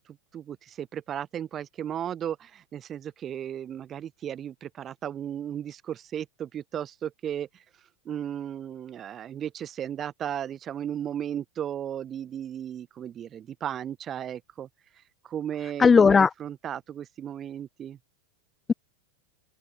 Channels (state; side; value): normal; both; correlation 0.79